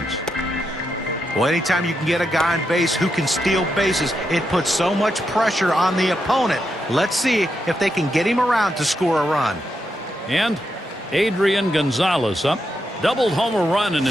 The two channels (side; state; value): both; normal; correlation 0.83